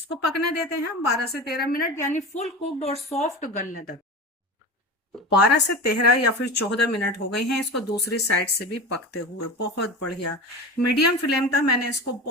पकने देते हैं हम 12 से 13 मिनट, यानी फुल कुक्ड और सॉफ्ट गलने तक। 12 से 13 या फिर 14 मिनट हो गए हैं इसको दूसरी साइड से भी पकते हुए। बहुत बढ़िया मीडियम फ्लेम था, मैंने इसको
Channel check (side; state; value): both; normal; correlation 0.29